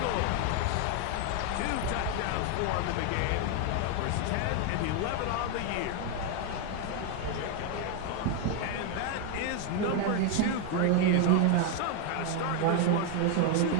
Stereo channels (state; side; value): different; both; correlation 0.01